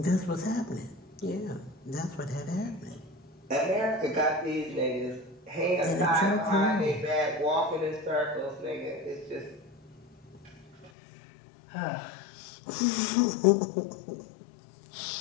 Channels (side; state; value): right; drops out; at 10.9 s